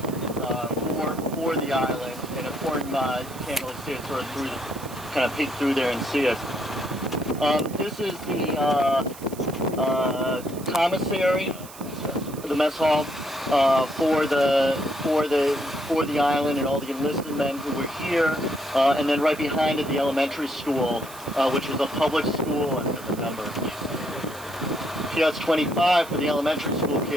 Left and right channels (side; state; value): right; noise; hiss, 17 dB below the sound